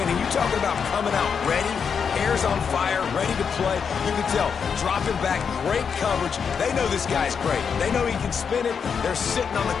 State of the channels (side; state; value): right; quieter; 6.5 dB